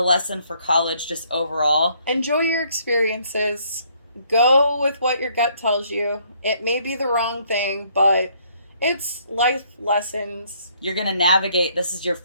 lesson for college, just overall. Enjoy your experiences. Go with what your gut tells you. It may be the wrong thing, but it's life lessons. You're going to navigate. This is your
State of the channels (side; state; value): both; inverted; correlation -0.66